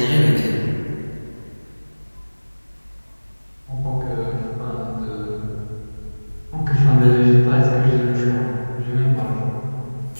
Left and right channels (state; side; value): inverted; both; correlation -1.00